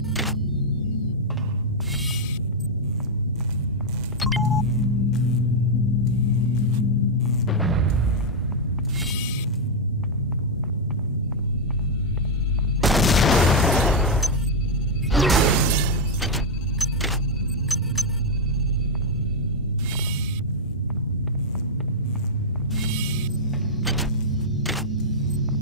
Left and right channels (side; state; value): both; normal; correlation -0.01